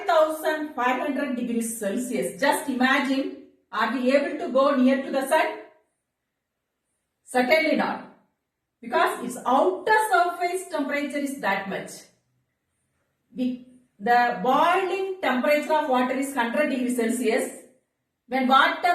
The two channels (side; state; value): both; identical; correlation 1.00